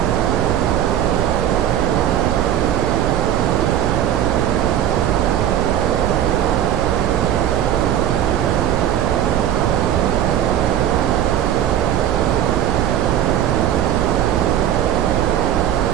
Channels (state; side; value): quieter; left; 10.0 dB